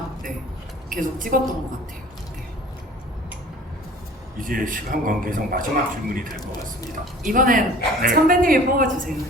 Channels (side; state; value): both; normal; correlation 0.46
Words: 네, 계속 찍었던 것 같아요. 네. 이제 시간 관계상 마지막 질문이 될 것 같습니다. 이번엔 네. 선배님이 뽑아주세요.